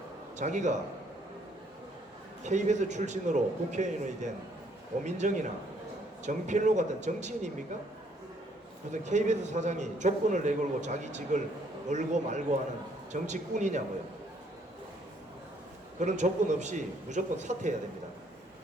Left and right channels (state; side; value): normal; both; correlation 0.66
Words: 자기가 KBS 출신으로 국회의원이 된 고민정이나 정필로 같은 정치인입니까? 무슨 KBS 사장이 조건을 내걸고 자기 직을 걸고 말고 하는 정치꾼이냐고요. 그런 조건 없이 무조건 사퇴해야 됩니다.